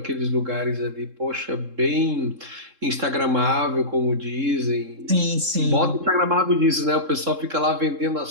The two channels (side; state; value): left; late; 3.7 ms